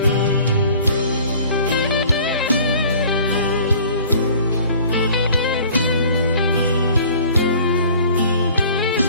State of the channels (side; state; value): both; inverted; correlation -0.50